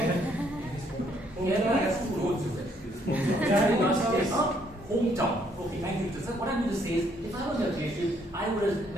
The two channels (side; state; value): both; normal; correlation 0.68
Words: Kerala has 2 roads. Hometown. Okay, thank you. So what I'm going to say is, if I was a creative, I would have